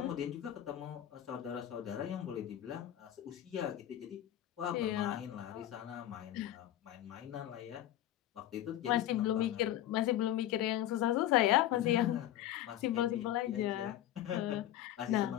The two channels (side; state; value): right; quieter; 12.7 dB